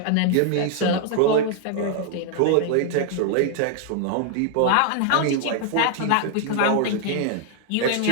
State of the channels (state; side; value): different; both; correlation 0.00